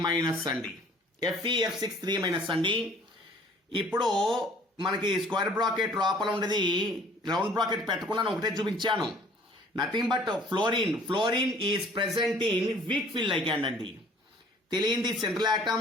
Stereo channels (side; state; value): both; normal; correlation 0.54